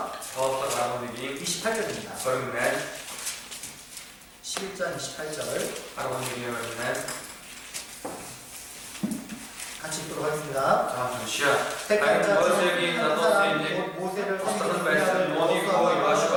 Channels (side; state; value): both; identical; correlation 1.00